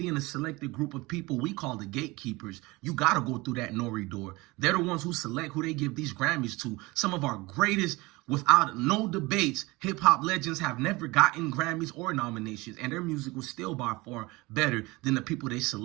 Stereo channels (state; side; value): quieter; left; 22.7 dB